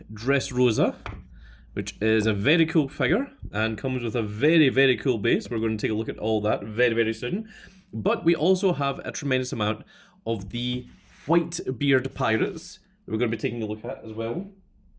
Dressrosa, which is a very cool figure and comes with a very, very cool base. We're going to take a look at all that very, very soon. But we also have a tremendous amount of the Whitebeard Pirates that we're going to be taking a look at as well.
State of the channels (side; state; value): both; identical; correlation 1.00